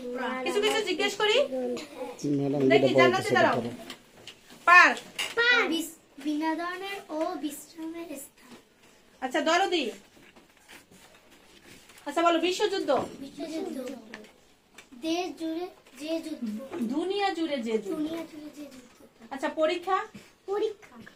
কিছু কিছু জিজ্ঞেস করি। দেখি, জান্নাতে দাঁড়াও। পার্ক, বিনোদনের ও বিশ্রামের স্থান। আচ্ছা দরদি। আচ্ছা বলো, বিশ্বযুদ্ধ। বিশ্বযুদ্ধ, দেশ জুড়ে যে যুদ্ধ। দুনিয়া জুড়ে যে যুদ্ধ। দুনিয়া জুড়ে যে যুদ্ধ। আচ্ছা পরীক্ষা, পরীক্ষা,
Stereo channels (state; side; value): identical; both; correlation 1.00